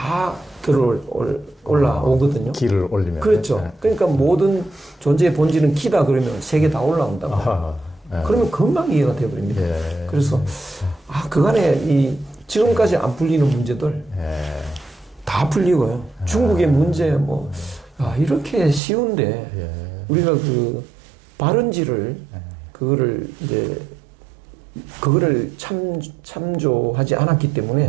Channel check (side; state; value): left; drops out; at 18.8 s